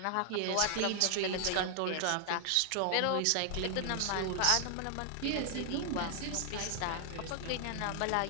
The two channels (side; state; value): both; different; correlation 0.00